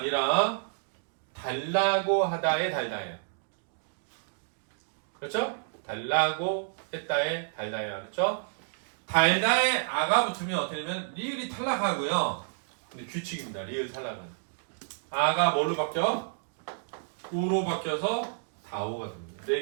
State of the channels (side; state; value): left; silent; digital silence